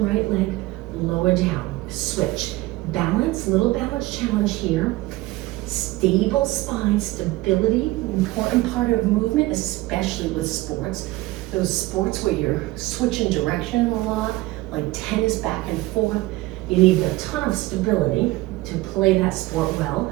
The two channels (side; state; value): left; quieter; 19.1 dB